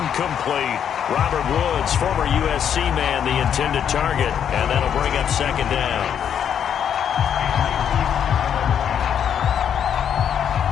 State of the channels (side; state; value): right; quieter; 8.7 dB